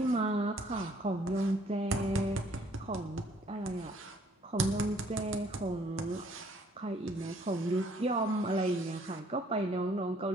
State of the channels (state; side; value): normal; both; correlation 0.61